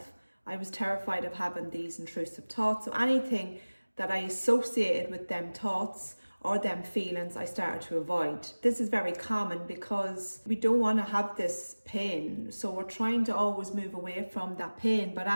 I was terrified of having these intrusive thoughts. So anything that I associated with them thoughts or them feelings, I started to avoid. This is very common because we don't want to have this pain. So we're trying to always move away from that pain. But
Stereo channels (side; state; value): both; inverted; correlation -1.00